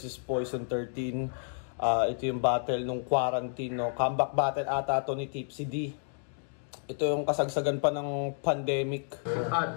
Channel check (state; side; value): silent; right; digital silence